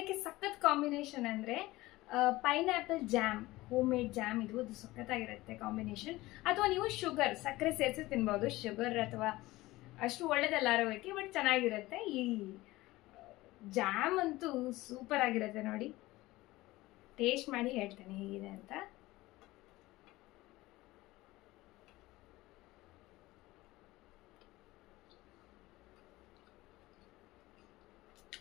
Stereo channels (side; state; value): right; quieter; 18.8 dB